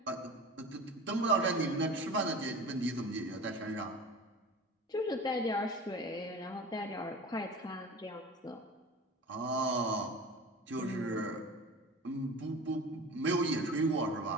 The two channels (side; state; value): both; normal; correlation 0.36